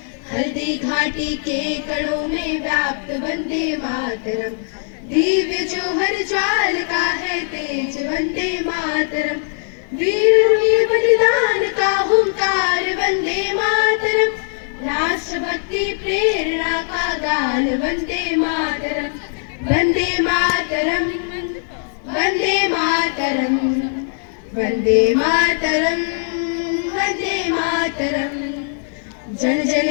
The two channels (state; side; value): silent; right; 59 dB below the other